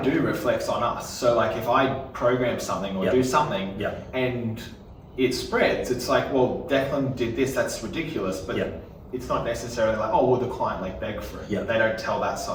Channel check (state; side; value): identical; both; correlation 1.00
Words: reflects on us. So like if I program something or do something and it spreads, it's like, well, Deklan did this, that's ridiculous, but it's not necessarily like, oh, well, the client like begged for it. They don't tell that